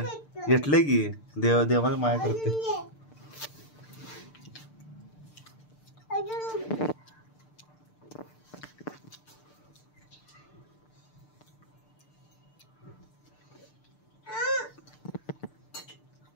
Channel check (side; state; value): right; late; 6.7 ms